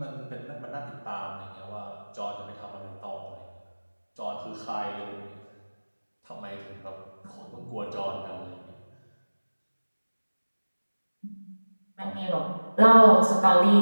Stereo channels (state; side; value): inverted; both; correlation -1.00